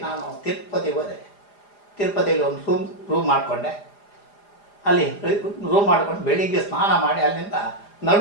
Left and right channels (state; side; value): late; right; 4.9 ms